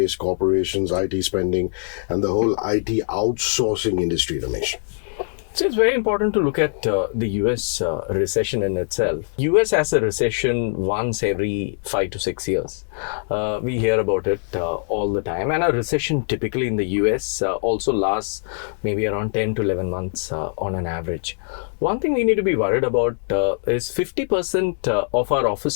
corporations, IT spending, and the whole IT outsourcing industry, Ramesh? So it's very important to look at the US recession in itself. US has a recession once every 5 to 6 years. We hear about it all the time. And a recession typically in the US also lasts maybe around 10 to 11 months on an average. One thing we need to be worried about is 50% of our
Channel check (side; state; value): right; silent; digital silence